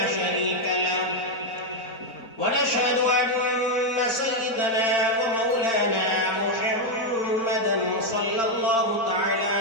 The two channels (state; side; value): late; right; 4.4 ms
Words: شريك له ونشهد أن سيدنا ومولانا محمدا صلى الله تعالى